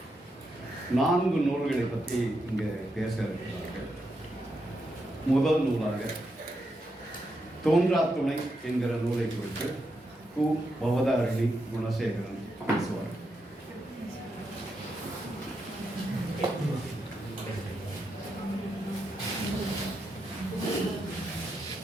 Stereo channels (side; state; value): both; normal; correlation 0.83